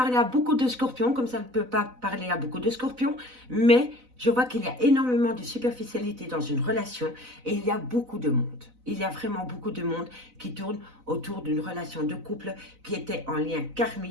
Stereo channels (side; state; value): left; late; 4.0 ms